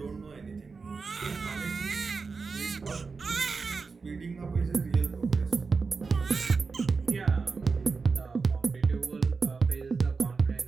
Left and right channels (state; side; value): quieter; left; 4.6 dB